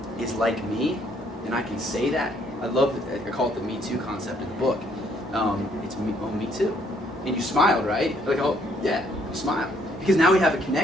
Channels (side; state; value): both; normal; correlation 0.67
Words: is like me, and I can say that, I call it the Me Too concept in the book. It's me too. And you smiled, right? Like, oh yeah, you smiled. Because now we have a